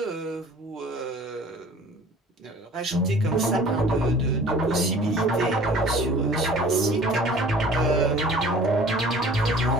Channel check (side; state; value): both; normal; correlation 0.47